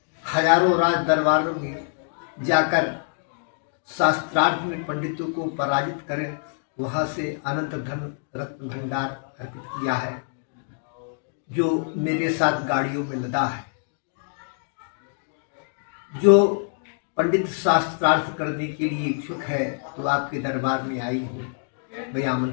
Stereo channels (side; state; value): right; silent; digital silence